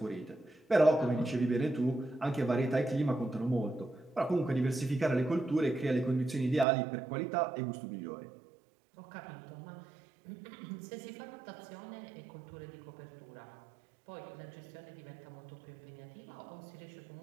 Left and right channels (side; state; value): left; drops out; at 6.7 s